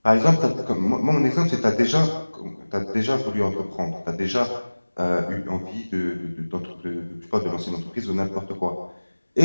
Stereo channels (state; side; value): inverted; both; correlation -1.00